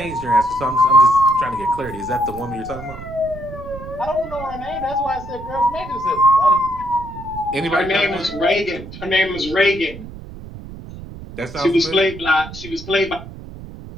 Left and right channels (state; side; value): noise; right; rumble, 13 dB below the sound